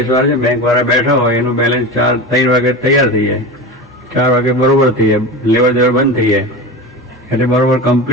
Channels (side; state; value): both; normal; correlation 0.27